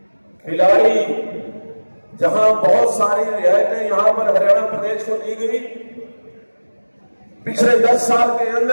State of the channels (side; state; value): both; inverted; correlation -1.00